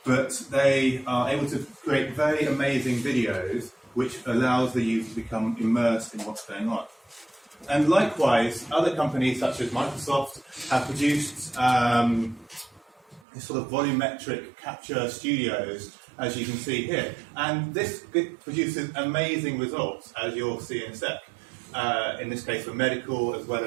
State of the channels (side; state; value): left; drops out; at 13.2 s